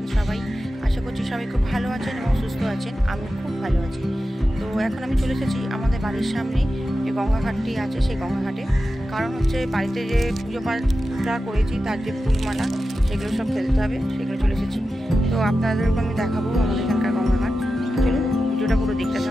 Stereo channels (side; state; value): both; normal; correlation 0.92